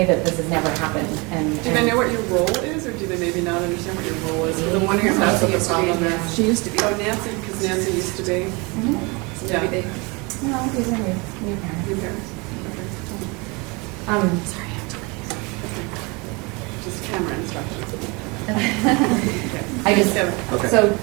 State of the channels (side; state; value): left; quieter; 27.8 dB